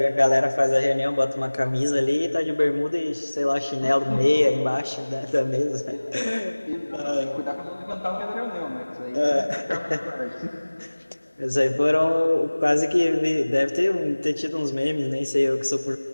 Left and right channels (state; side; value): inverted; both; correlation -1.00